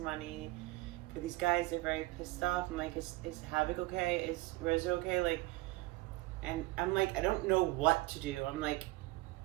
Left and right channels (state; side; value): quieter; left; 19.6 dB